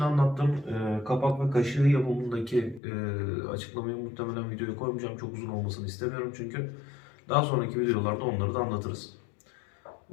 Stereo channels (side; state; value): right; drops out; at 2.8 s